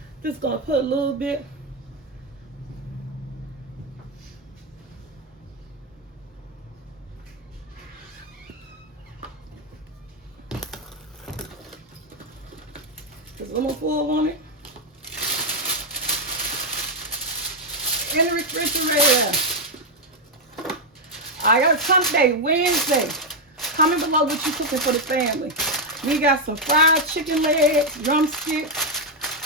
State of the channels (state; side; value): normal; both; correlation 0.02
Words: Just gonna put a little bit. Just a little more full on it. In the refrigerator. I got a Sunday, Wednesday. Comment below what you cooking for the family. We got some fried chicken legs, drumsticks,